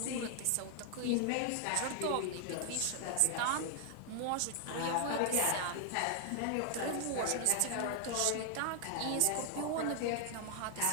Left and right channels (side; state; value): both; different; correlation 0.00